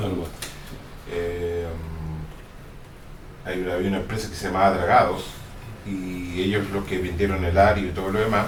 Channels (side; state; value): both; identical; correlation 1.00